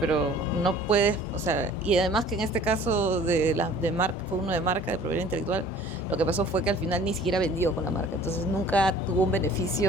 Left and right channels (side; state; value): both; normal; correlation 0.50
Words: no puedes, o sea, y además que en este caso de marca, fue uno de marca, de propiedad intelectual, lo que pasó fue que al final ni siquiera vendió con la marca, entonces nunca tuvo un